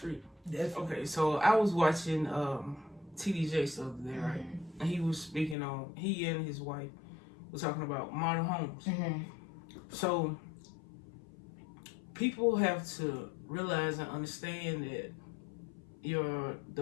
Definitely. Okay, so I was watching TD Jakes the other day, right? And he was speaking on, he and his wife were talking about modern homes. Mm-hmm. So people have to realize and understand that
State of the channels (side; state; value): right; drops out; at 5.6 s